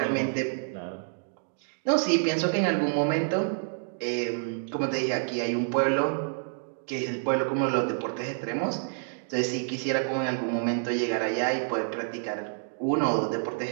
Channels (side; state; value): left; silent; digital silence